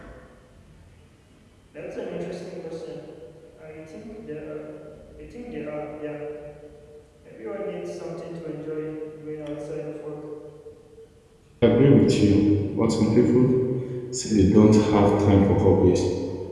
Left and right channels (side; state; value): both; identical; correlation 1.00